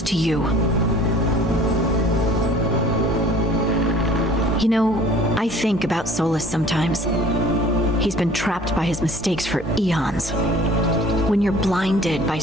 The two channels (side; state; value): both; normal; correlation 0.49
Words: to you. You know, I think about Solus sometimes. He's been trapped by his mistakes for eons. When you're blinded by